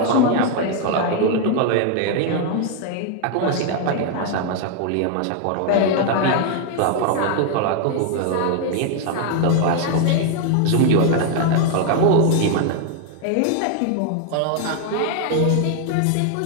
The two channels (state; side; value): different; both; correlation 0.00